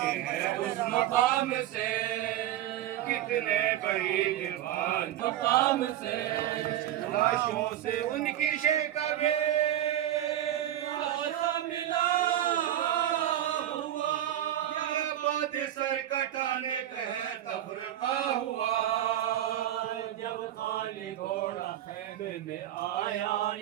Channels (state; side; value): quieter; left; 12.4 dB